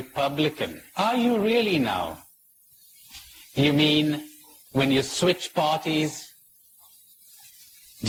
Are you really now? You mean when you switch parties,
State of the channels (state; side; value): identical; both; correlation 1.00